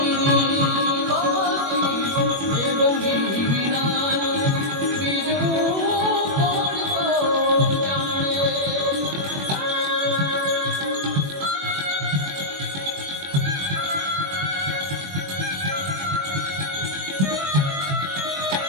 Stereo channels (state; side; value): late; left; 21 ms